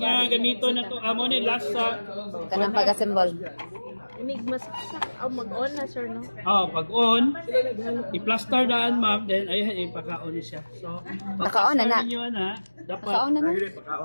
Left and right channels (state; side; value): inverted; both; correlation -1.00